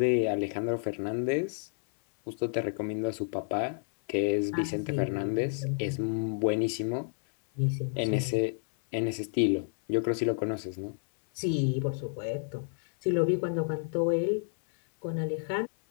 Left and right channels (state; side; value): silent; right; 58 dB below the other